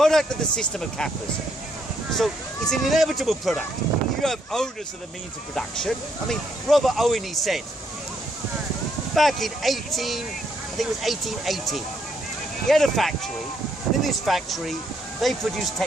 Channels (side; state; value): both; normal; correlation 0.73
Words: of the system of capitalism. So it's an inevitable product. You have owners of the means of production. I mean, Robert Owen, he said, back in 1880, he had a factory, and in this factory, they produced